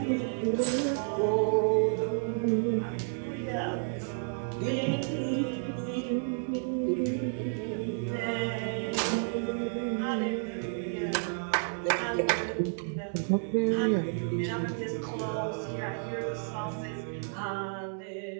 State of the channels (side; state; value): left; silent; digital silence